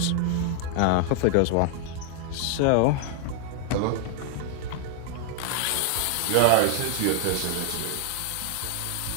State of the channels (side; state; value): both; different; correlation 0.00